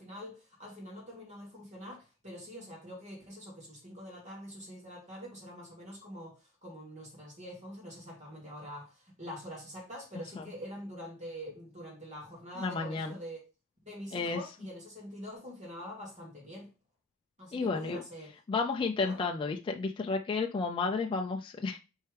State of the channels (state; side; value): quieter; right; 3.2 dB